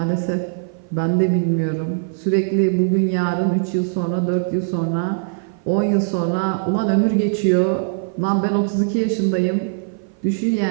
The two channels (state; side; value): silent; left; 56 dB below the other